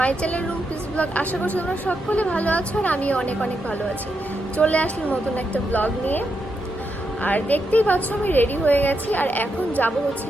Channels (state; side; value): normal; both; correlation 0.83